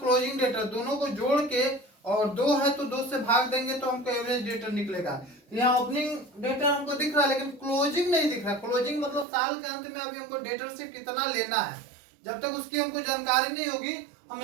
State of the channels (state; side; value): drops out; left; at 9.2 s